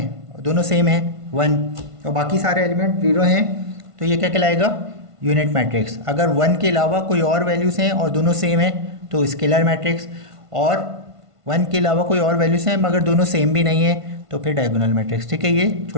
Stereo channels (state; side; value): late; left; 1.5 ms